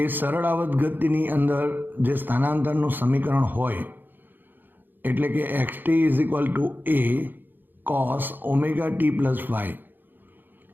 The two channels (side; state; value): left; late; 0.092 ms